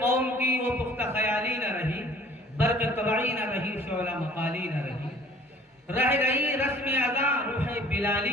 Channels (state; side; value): normal; both; correlation 0.53